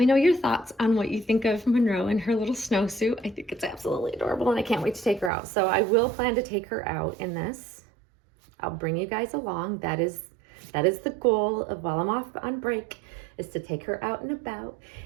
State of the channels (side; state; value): left; drops out; at 5.3 s